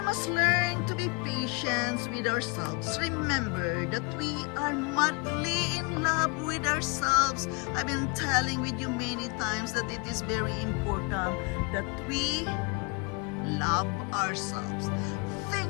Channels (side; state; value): right; quieter; 31.1 dB